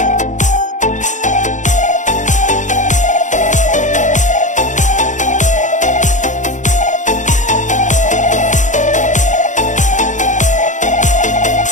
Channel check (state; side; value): late; right; 0.36 ms